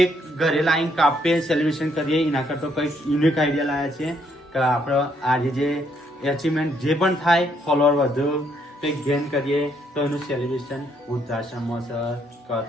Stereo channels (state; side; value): normal; both; correlation 0.71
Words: ઘરે લાવીને કાપીએ, સેલિબ્રેશન કરીએ. એના કરતો કંઈક યુનિક આઈડિયા લાવ્યા છીએ કે આપણે આજે જે અચીવમેન્ટ જે પણ થાય, ફોલોઅર વધુ કંઈક ગેન કરીએ તો એનું સેલિબ્રેશન વૃદ્ધાશ્રમમાં છે કાં